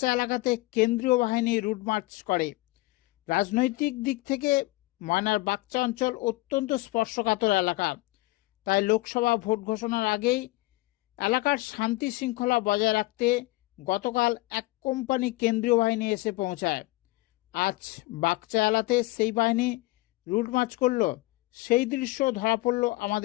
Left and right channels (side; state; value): right; quieter; 20.7 dB